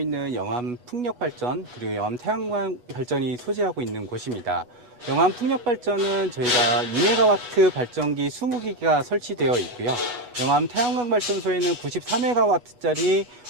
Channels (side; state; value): left; late; 8.2 ms